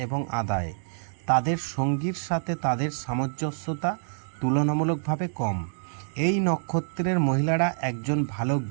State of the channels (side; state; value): left; silent; 59 dB below the other